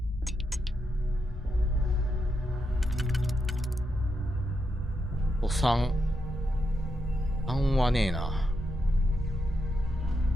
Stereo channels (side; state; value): both; normal; correlation 0.83